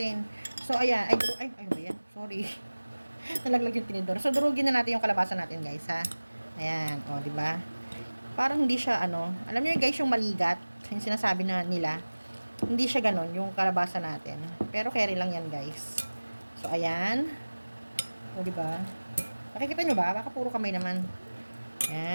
So ayan, ano ba 'yan? Sorry. Nalaglag yung tinidor. So durugin na natin yung kalabasa natin, guys, ha. Ayan, 'di ba? Parang hindi siya alam niyo guys, yung maligat, yung sinasabi na nila. Hindi siya ganon yung kalabasa natin. Pero carry lang 'yan, guys. So ayan. 'Di ba? Nakikita niyo ba? Baka puro kamay naman.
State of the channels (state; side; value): inverted; both; correlation -1.00